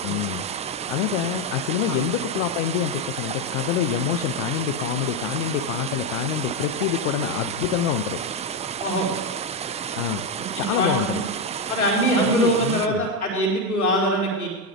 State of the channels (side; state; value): both; normal; correlation 0.08